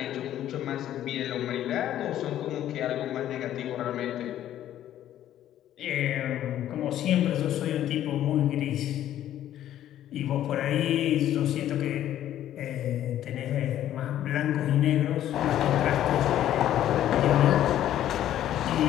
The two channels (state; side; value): quieter; right; 11.9 dB